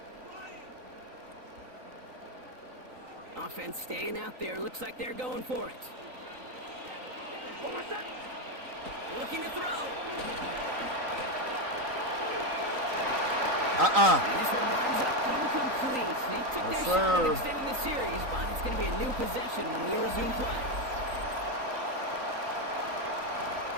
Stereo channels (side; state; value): left; late; 3.9 ms